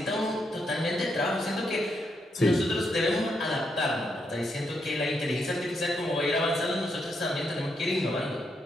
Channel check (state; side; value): normal; both; correlation 0.79